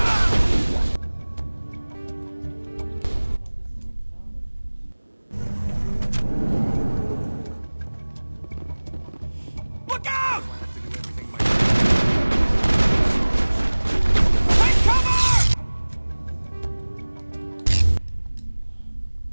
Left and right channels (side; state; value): both; inverted; correlation -1.00